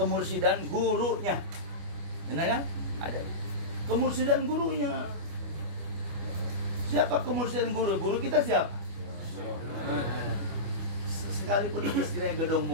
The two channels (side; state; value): left; late; 25 ms